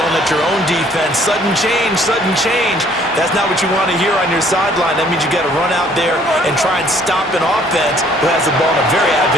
yelling at your own defense. Sudden change, sudden change. That's not what you want to hear on your sideline. That means you got to run out there and try and stop an offense who has the ball in a very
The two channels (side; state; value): both; normal; correlation 0.60